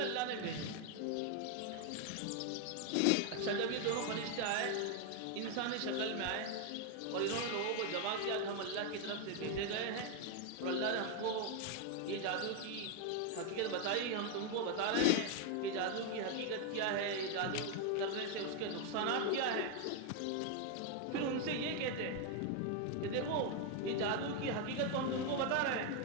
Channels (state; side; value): different; both; correlation 0.01